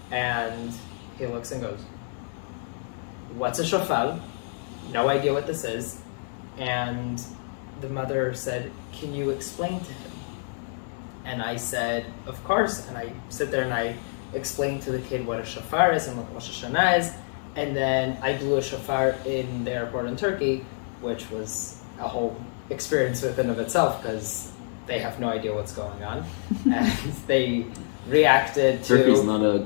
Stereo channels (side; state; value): right; silent; digital silence